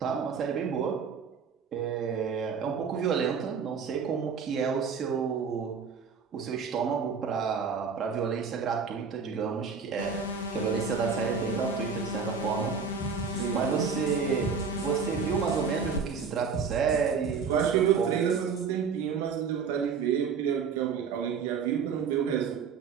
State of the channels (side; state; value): left; quieter; 5.8 dB